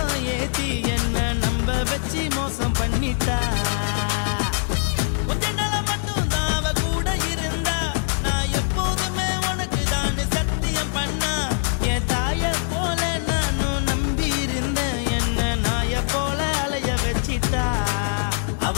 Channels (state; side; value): silent; right; digital silence